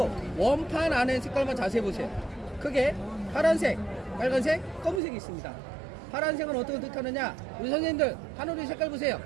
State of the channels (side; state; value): left; drops out; at 5.0 s